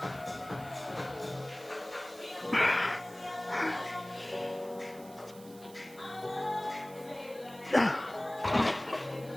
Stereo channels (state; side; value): noise; right; hiss, 20 dB below the sound